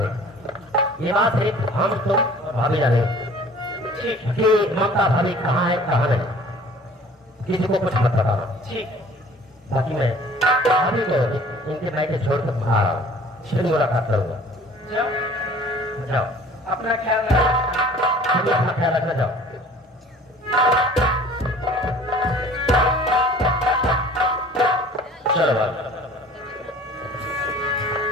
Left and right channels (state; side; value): normal; both; correlation 0.48